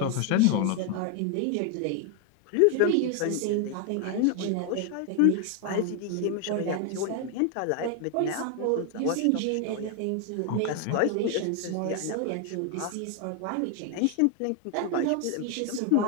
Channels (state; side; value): different; both; correlation 0.01